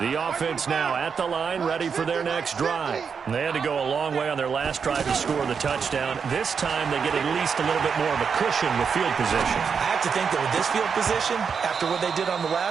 offense now at the line, ready for their next drive. They had to go a long way on their last drive to score the touchdown. This time they get at least a little bit more of a cushion with field position. I have to think that with this field position, after what they did on the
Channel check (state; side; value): quieter; left; 6.2 dB